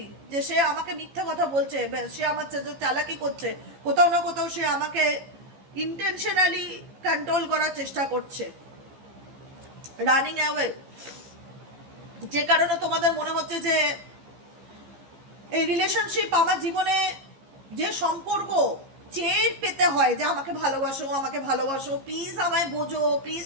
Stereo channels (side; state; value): left; late; 15 ms